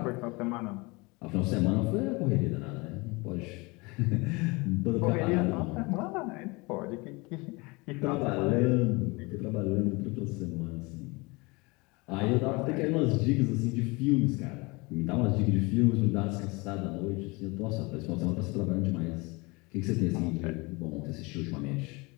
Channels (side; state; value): right; quieter; 26.1 dB